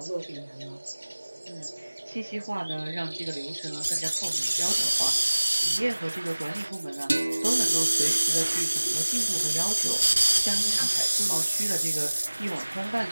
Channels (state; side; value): inverted; both; correlation -1.00